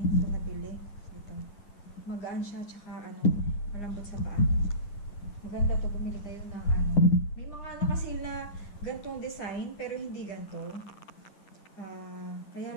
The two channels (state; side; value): late; right; 9.8 ms